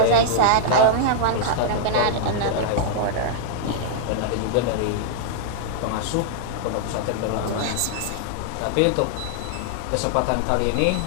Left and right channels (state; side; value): different; both; correlation -0.01